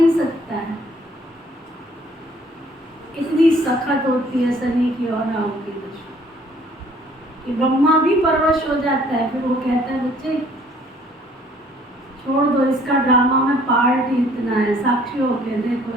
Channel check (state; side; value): normal; both; correlation 0.59